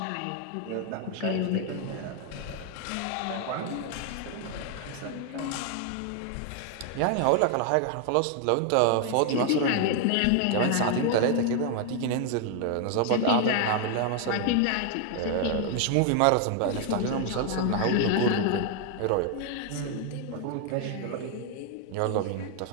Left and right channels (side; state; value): both; different; correlation 0.00